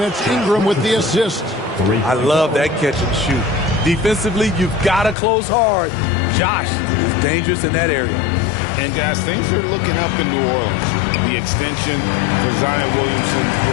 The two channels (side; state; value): right; drops out; at 5.2 s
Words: it's Ingram with the assist. I love that catch and shoot. Defensively, you've got to close hard. Josh is dangerous in that area. And, guys, things are looking up in New Orleans. The extension for Zion Williamson